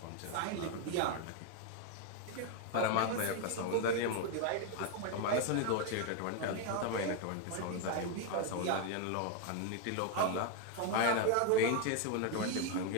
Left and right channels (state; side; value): different; both; correlation 0.01